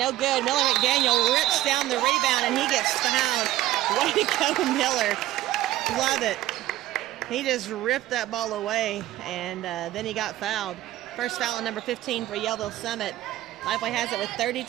good. Miller McDaniel rips down the rebound and he gets fouled. Way to go, Miller. Love it. He just ripped that ball away and then he got fouled. First foul on number 15 for Yellville Summit. Lifeway has it with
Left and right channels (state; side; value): quieter; left; 15.1 dB